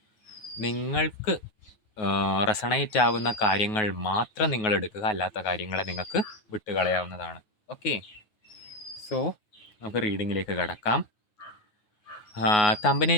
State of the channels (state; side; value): late; right; 9.4 ms